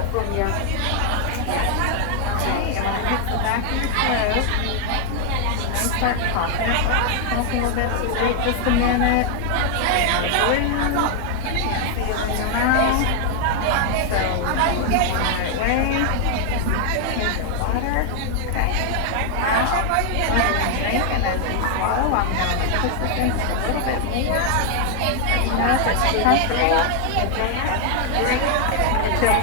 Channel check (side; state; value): both; different; correlation 0.00